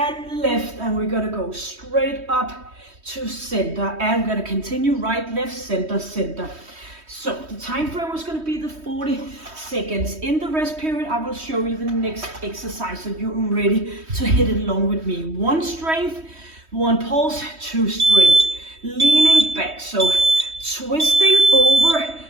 left, and we're gonna go straight up to center, and we're gonna continue right, left, center, center. So the time frame was going to be the 40 seconds. In the rest period, I will show you the next exercise so you're ready to hit it along with me. 1 strength, 1 pulse, 2 strength. Leaning back, so twisting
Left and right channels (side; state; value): left; late; 3.1 ms